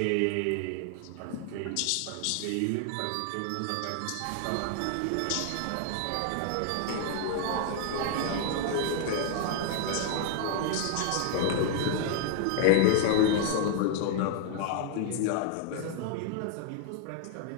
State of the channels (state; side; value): different; both; correlation 0.00